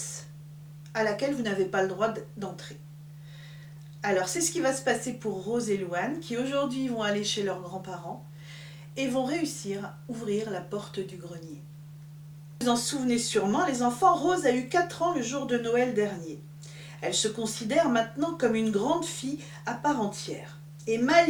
à laquelle vous n'avez pas le droit d'entrer? Alors c'est ce qui va se passer pour Rose et Louane qui aujourd'hui vont aller chez leurs grands-parents et vont réussir à ouvrir la porte du grenier. Vous en souvenez sûrement, les enfants, Rose a eu 4 ans le jour de Noël dernier. Elle se considère maintenant comme une grande fille à part entière et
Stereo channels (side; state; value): both; identical; correlation 1.00